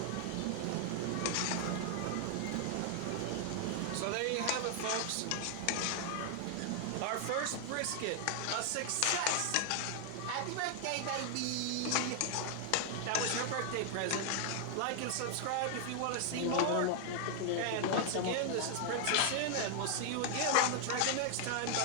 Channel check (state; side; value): different; both; correlation 0.00